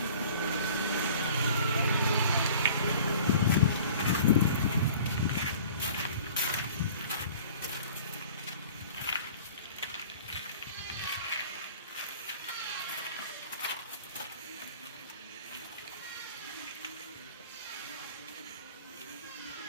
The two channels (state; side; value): inverted; both; correlation -0.45